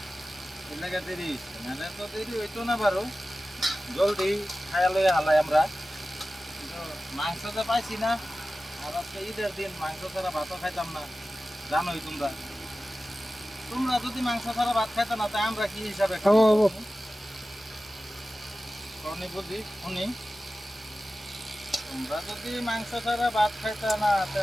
এর লেগে দেরি হয়েছে নাহলে তো দেরি হইতো না বারো জলদি খাইয়া লইয়া হালাই আমরা কিন্তু মাংস তো পাইছি না আর আজকে ঈদের দিন মাংস ছাড়া ভাতও খাইতাম না জানোই তোমরা তোমরা যদি মাংস ছাড়া ভাত খাইতো না তাই আমরা কি হিসাবে খাবো শুনি বুঝি শুনি তোমরা যদি মাংস ছাড়া ভাত খাইতা না তা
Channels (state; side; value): normal; both; correlation 0.95